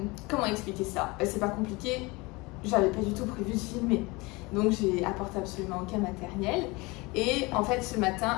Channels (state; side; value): quieter; right; 24.5 dB